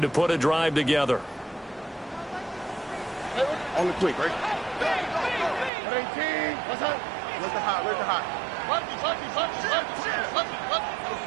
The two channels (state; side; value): drops out; left; at 5.7 s